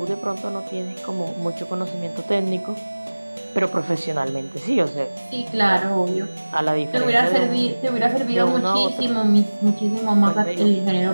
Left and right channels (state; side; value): inverted; both; correlation -1.00